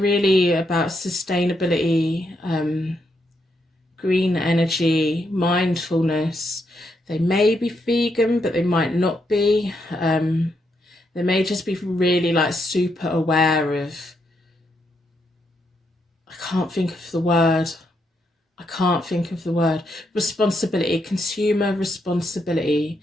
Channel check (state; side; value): normal; both; correlation 0.79